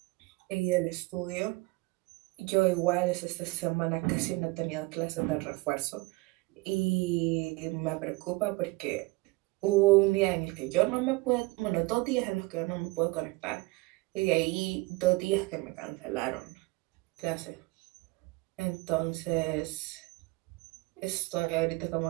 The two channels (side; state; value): left; quieter; 23.3 dB